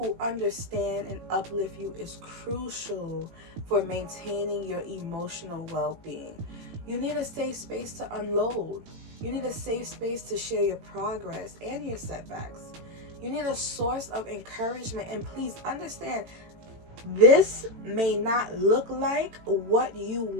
understand and uplift you is crucial for maintaining your emotional well-being. You need a safe space to unload. You need a safe space to share your progress and your setbacks. You need a source of encouragement, and please understand, this may not look like what you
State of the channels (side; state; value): left; late; 18 ms